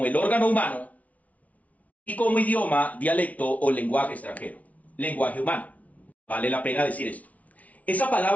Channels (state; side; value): late; right; 0.069 ms